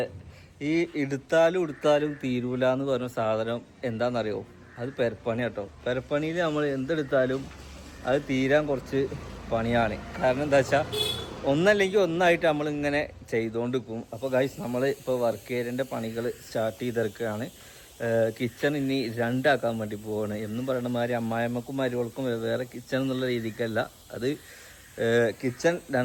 ഈ എടുത്താലും തീരൂല എന്ന് പറഞ്ഞ സാധനം എന്താണെന്നറിയോ? അത് പെരപ്പണി കേട്ടോ. പെരപ്പണിയിൽ നമ്മൾ എന്തെടുത്താലും അത് തീരാൻ കുറച്ച് പണിയാണ്. കാരണം എന്താ വെച്ചാൽ ഒന്നല്ലെങ്കിൽ ഒന്നായിട്ട് നമ്മളിങ്ങനെ ചെയ്തുകൊണ്ടിരിക്കും. അപ്പോൾ ഗൈസ്, നമ്മൾ ഇപ്പോൾ വർക്ക് ഏരിയൻ്റെ പണികൾ സ്റ്റാർട്ട് ചെയ്തെടുക്കുകയാണ്. കിച്ചൺ ഇനി രണ്ടാക്കാൻ വേണ്ടി പോവാണ്. എന്നും പറയുന്ന മാതിരി അമ്മായിമ്മക്കും മരുവൾക്കും വേറെ കിച്ചൺ എന്നുള്ള രീതിക്കല്ല, അത് കിച്ചൺ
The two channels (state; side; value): identical; both; correlation 1.00